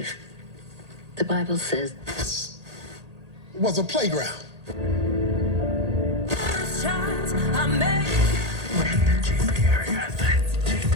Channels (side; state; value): left; late; 1.8 ms